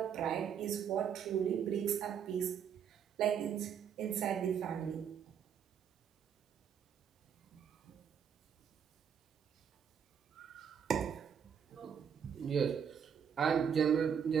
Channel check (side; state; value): left; quieter; 7.8 dB